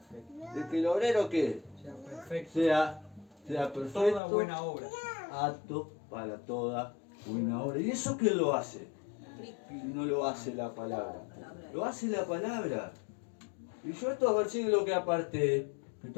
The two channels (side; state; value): right; drops out; at 4.2 s